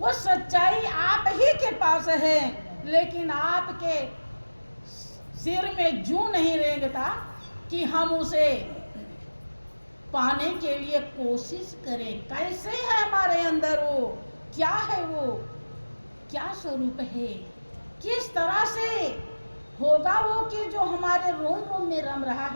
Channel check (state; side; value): inverted; both; correlation -1.00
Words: सच्चाई आप ही के पास है, लेकिन आपके सिर में जूं नहीं रेंगता कि हम उसे पाने के लिए कोशिश करें। कैसे है हमारे अंदर वो, क्या है वो, क्या स्वरूप है, किस तरह से होगा वो कि जो हमारे रोम रोम में रम रहा